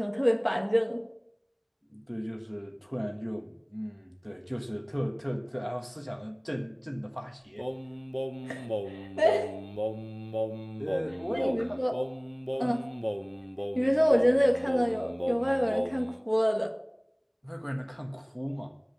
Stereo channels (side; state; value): both; identical; correlation 1.00